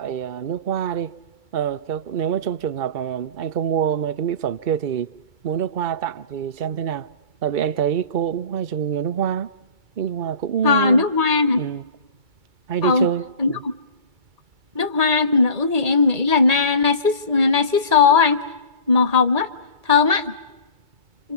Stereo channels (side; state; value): left; late; 2.3 ms